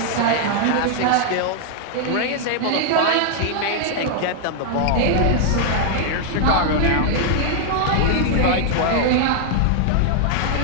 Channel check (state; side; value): different; both; correlation 0.00